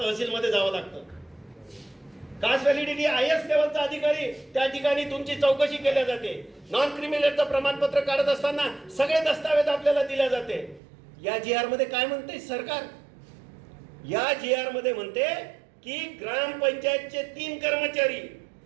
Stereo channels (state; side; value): drops out; left; at 10.8 s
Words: जावं लागतं. कास्ट व्हॅलिडिटी IAS लेवलचा अधिकारी, त्या ठिकाणी तुमची चौकशी केल्या जाते. नॉन क्रिमिनलचं प्रमाणपत्र काढत असताना सगळे दस्तावेज आपल्याला दिले जाते. या जीआर मध्ये काय म्हणते सरकार? या जीआर मध्ये म्हणते की ग्रामपंचायतचे 3 कर्मचारी,